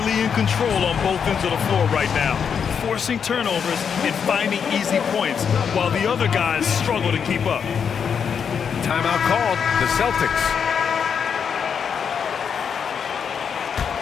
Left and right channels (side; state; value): right; quieter; 7.0 dB